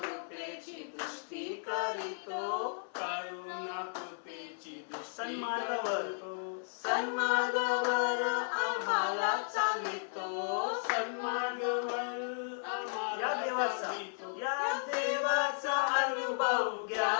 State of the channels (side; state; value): right; silent; 55 dB below the other